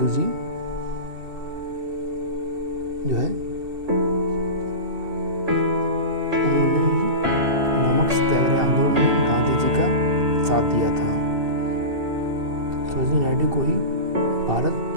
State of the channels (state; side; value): late; left; 2.7 ms